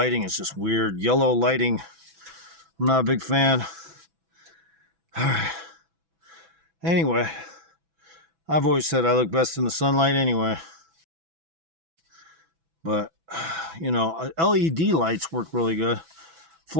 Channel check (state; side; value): late; left; 6.1 ms